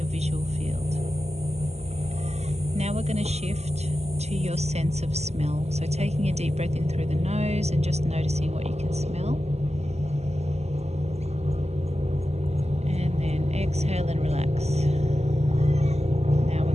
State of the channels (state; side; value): late; left; 0.31 ms